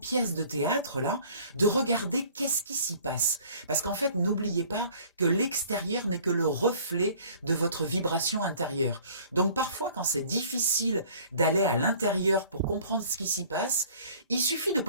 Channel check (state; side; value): inverted; both; correlation -0.52